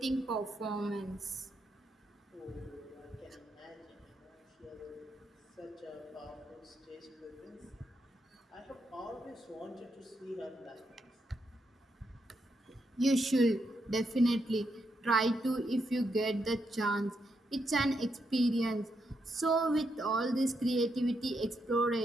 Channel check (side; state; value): both; normal; correlation 0.81